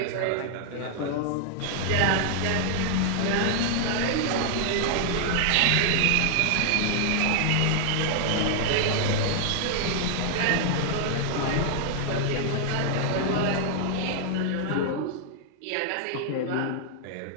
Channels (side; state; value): both; different; correlation 0.00